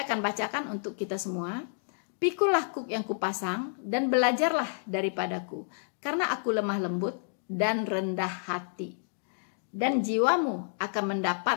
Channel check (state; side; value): silent; right; digital silence